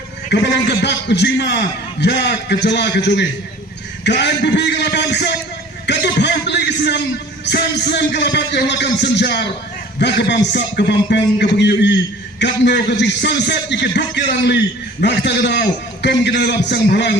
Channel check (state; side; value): normal; both; correlation 0.48